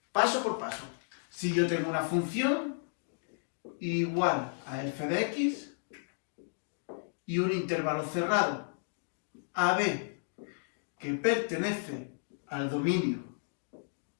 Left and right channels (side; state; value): right; silent; digital silence